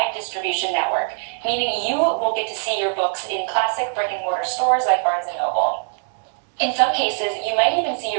distribution network, meaning you will get to see your books in classic brick-and-mortar stores like Barnes & Noble. In some cases, you might even see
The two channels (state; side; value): silent; left; digital silence